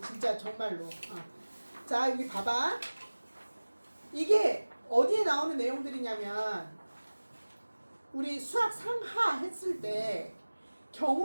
진짜 정말로. 자, 여기 봐봐. 이게 어디에 나오는 내용들이냐면 우리 수학 상하 했을 때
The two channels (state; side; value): inverted; both; correlation -1.00